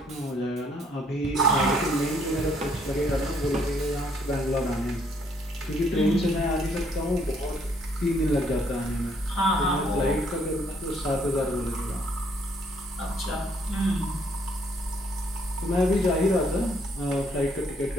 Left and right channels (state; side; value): normal; both; correlation 0.67